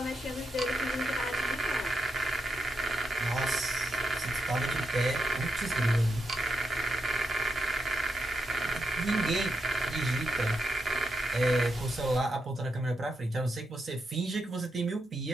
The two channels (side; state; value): both; normal; correlation 0.83